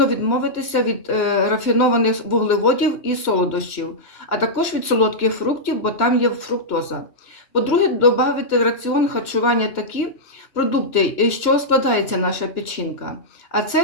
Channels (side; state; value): right; late; 2.9 ms